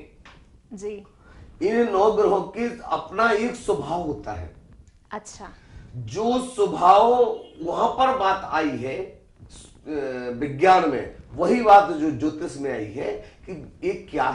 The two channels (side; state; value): both; identical; correlation 1.00